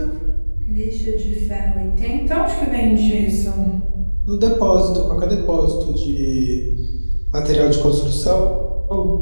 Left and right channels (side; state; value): both; inverted; correlation -1.00